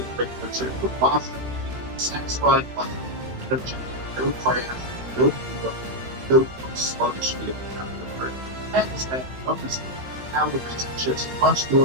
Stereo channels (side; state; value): left; late; 16 ms